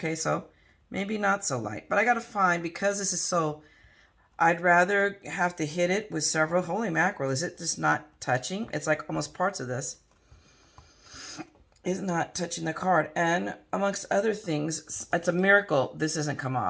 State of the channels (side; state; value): both; identical; correlation 1.00